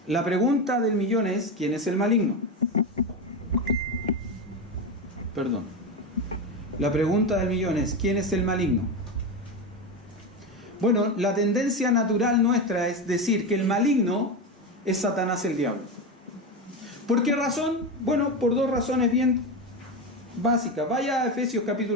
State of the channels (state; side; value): normal; both; correlation 0.17